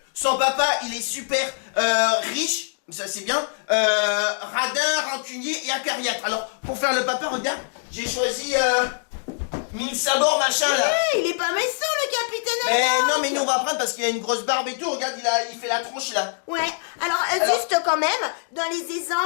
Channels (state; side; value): silent; right; digital silence